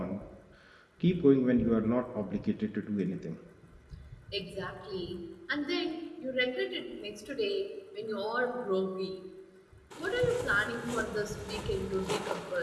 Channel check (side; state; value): both; identical; correlation 1.00